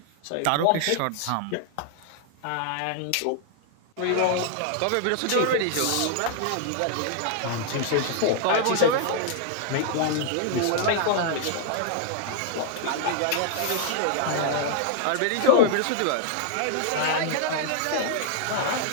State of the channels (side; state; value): both; different; correlation -0.01